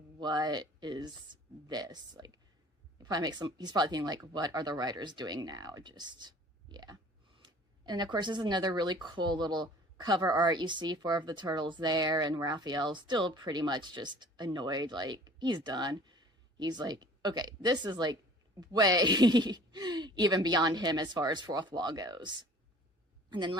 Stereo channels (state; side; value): normal; both; correlation 0.49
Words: is this? Like, he's probably thinking, like, what are the writers doing now? Just, yeah. And of course, this is another really cool little cover art. You see 4 of the turtles there, and Raphael's still pretty much just annoyed, like, he's done. He's like, okay, this is, like, way even beyond him as far as fourth wall goes. And then